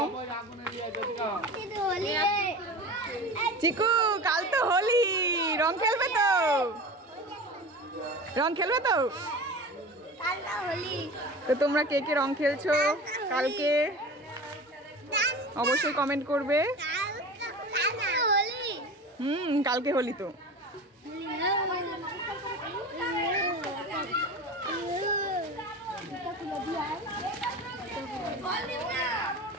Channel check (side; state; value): both; normal; correlation 0.33